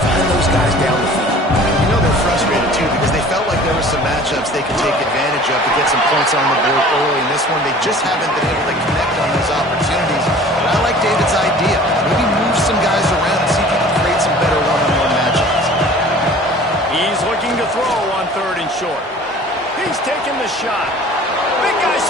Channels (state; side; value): normal; both; correlation 0.46